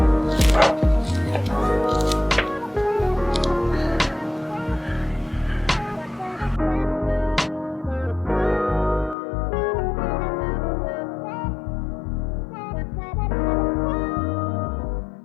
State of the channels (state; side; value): drops out; right; at 9.2 s